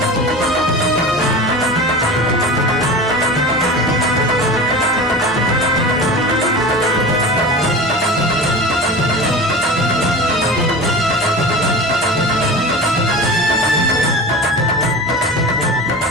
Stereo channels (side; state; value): both; normal; correlation 0.32